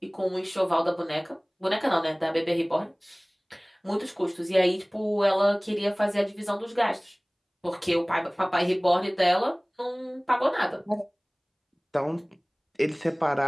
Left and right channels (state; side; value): identical; both; correlation 1.00